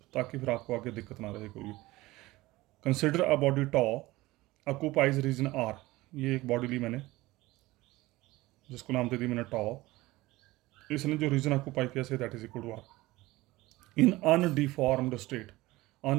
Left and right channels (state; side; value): quieter; left; 19.2 dB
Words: ताकि फिर आपको आगे दिक्कत ना रहे कोई भी। Consider a body to occupies region R. ये एक बॉडी ली मैंने, जिसको नाम दे दी मैंने टॉ। इसने जो रीजन ऑक्यूपाई किया say that is equal to R in undeformed state.